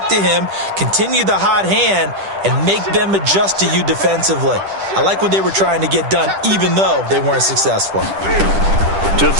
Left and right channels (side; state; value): left; late; 10 ms